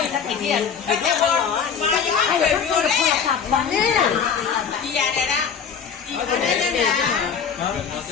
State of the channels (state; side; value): quieter; right; 6.8 dB